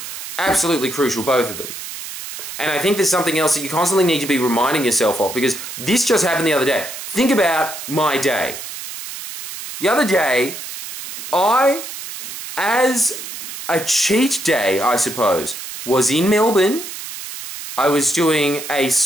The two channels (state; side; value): noise; right; hiss, 10 dB below the sound